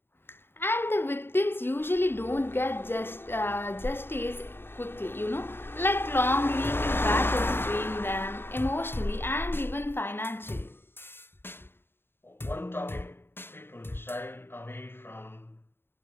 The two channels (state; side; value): late; right; 0.11 ms